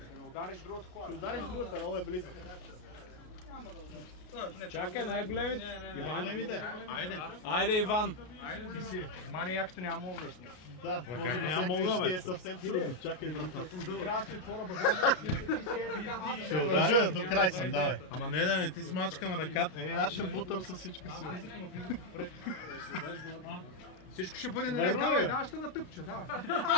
удариш другата кола. Ще удариш другата, много е близо. Чакай, най-големите. Големите. Айде, Иван. Ти си. Мани якото няма обясни. Да, може би сега е съвсем трудно. Чакай, трябва да се отворя багажа. ще ударя, до край съм, давай. Ама не, ти смачкам ръката. Аз ще бутам с всичка си. Всичко ще бъде наред, давай, ще натъпча, давай.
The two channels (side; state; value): right; late; 33 ms